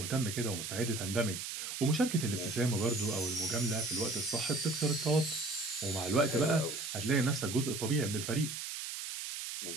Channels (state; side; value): noise; right; hiss, 6 dB below the sound